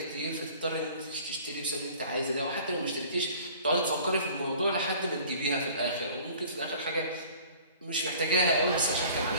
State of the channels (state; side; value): inverted; both; correlation -0.49